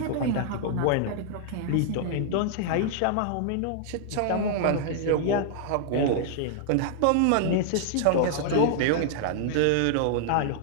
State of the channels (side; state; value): both; different; correlation -0.01